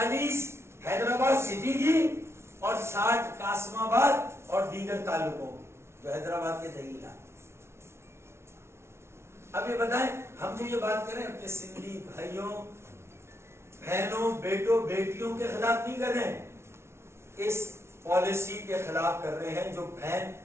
حیدرآباد سٹی کی اور 60 قاسم آباد اور دیگر تعلقوں جو حیدرآباد کے دہی علاقے۔ اب یہ بتائیں، ہم جو یہ بات کریں اپنے سندھی بھائیوں بہنوں بیٹوں بیٹیوں کے خلاف نہیں کر رہے ہیں، اس پالیسی کے خلاف کر رہے ہیں جو بہن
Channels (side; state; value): left; late; 0.13 ms